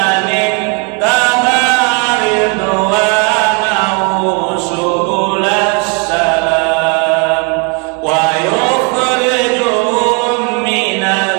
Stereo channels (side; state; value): left; quieter; 33.1 dB